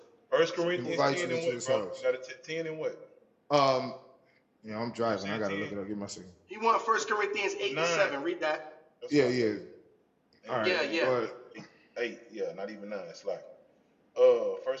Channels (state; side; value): identical; both; correlation 1.00